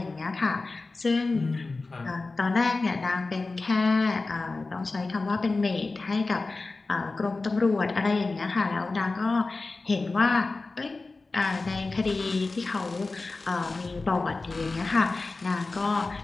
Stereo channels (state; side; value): quieter; right; 3.6 dB